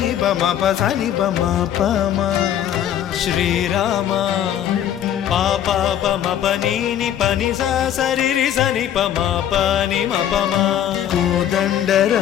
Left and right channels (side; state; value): right; quieter; 10.6 dB